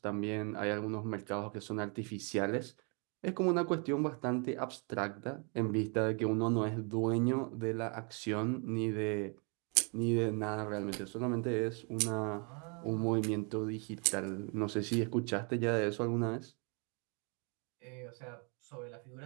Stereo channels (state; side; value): quieter; left; 35.7 dB